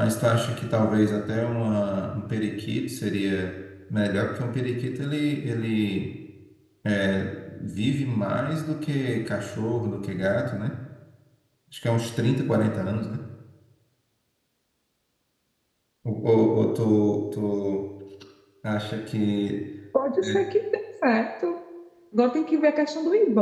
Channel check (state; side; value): identical; both; correlation 1.00